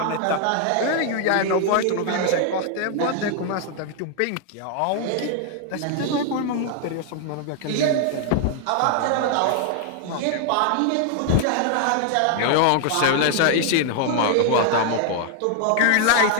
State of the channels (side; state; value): both; different; correlation 0.00